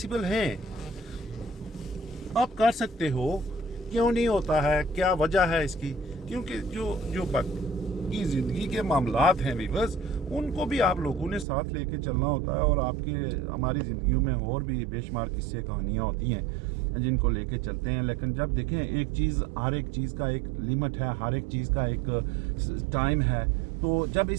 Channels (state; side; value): drops out; left; at 11.5 s